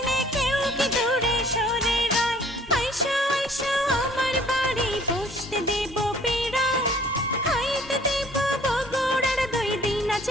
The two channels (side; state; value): both; normal; correlation 0.55